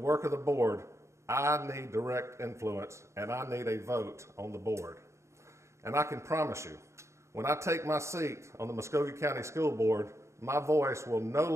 of the board, I need direct influence and I need a vote on the board. And I can promise you, when I take my seat on the Muscogee County School Board, my voice will no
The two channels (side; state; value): left; late; 0.14 ms